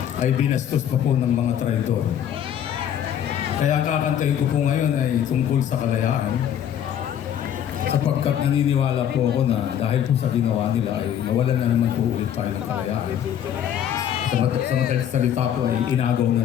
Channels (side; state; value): right; quieter; 9.7 dB